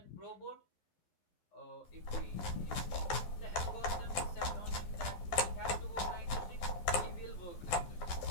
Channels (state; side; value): late; right; 12 ms